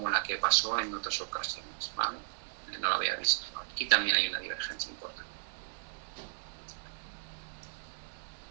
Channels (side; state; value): left; silent; digital silence